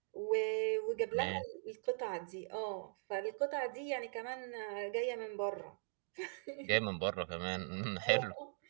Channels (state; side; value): silent; left; digital silence